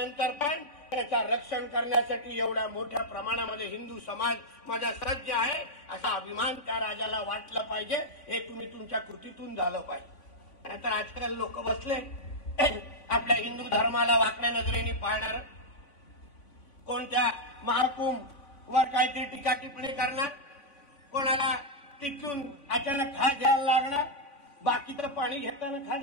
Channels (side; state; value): right; late; 3.5 ms